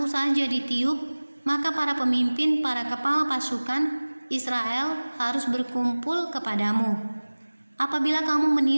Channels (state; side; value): inverted; both; correlation -1.00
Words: saja ditiup, maka para pemimpin, para kepala pasukan Israel harus berkumpul kepadamu. Apabila kamu